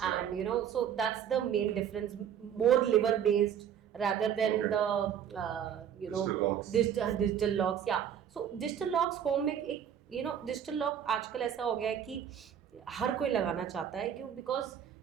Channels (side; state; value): left; quieter; 8.9 dB